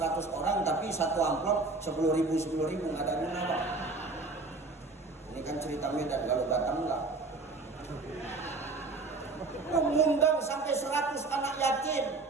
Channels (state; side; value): quieter; left; 3.6 dB